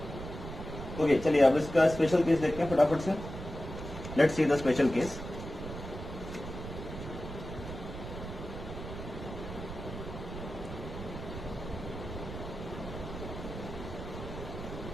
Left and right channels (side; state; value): right; noise; rumble, 9 dB below the sound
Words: ओके, चलिए अब इसका स्पेशल केस देखते हैं फटाफट से. Let's see the special case.